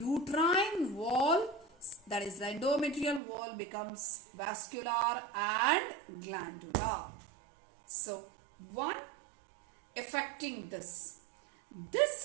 wall, that is the endometrial wall, becomes vascular and glandular. So, one affecting this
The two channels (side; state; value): left; drops out; at 3.2 s